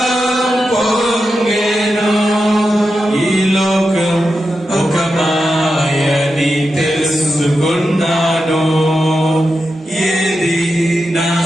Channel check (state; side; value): normal; both; correlation 0.89